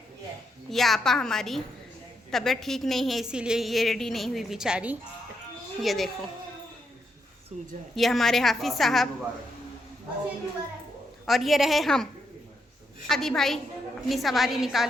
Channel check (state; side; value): normal; both; correlation 0.80